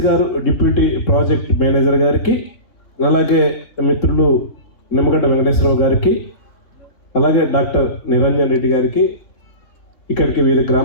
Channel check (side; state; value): right; late; 3.7 ms